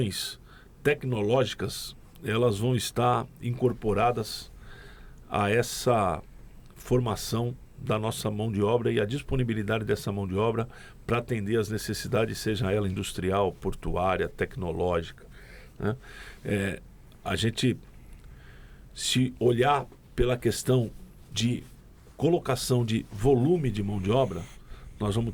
tecnológicas elas vão estar incorporadas a essa formação da nossa mão de obra e a disponibilidade dessa mão de obra para atender às necessidades, seja ela industrial, portuária, tecnológica, né? A gente, se olhar pela questão de colocação de volume de mão de obra, nós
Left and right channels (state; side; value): identical; both; correlation 1.00